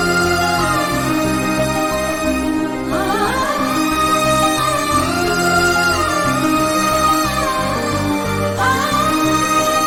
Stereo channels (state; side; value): identical; both; correlation 1.00